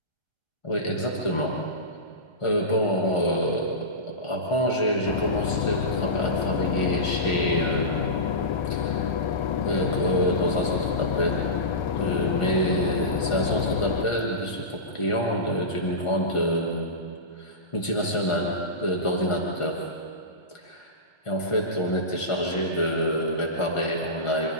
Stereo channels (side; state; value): right; late; 1.5 ms